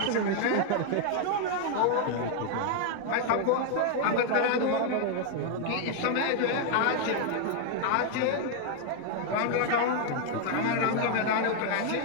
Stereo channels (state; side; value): different; both; correlation 0.00